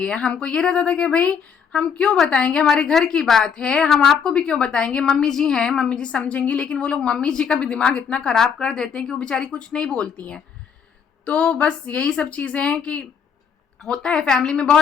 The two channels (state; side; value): quieter; right; 6.9 dB